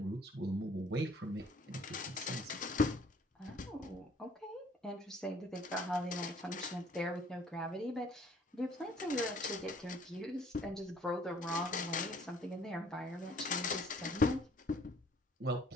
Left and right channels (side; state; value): both; normal; correlation 0.58